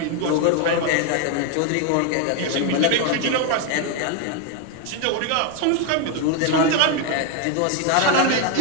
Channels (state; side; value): different; both; correlation 0.01